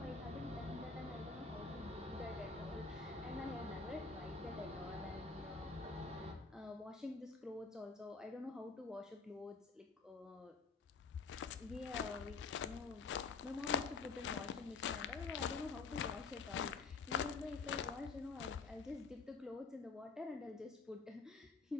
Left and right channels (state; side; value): quieter; right; 4.5 dB